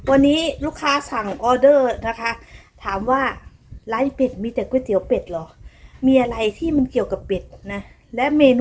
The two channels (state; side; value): identical; both; correlation 1.00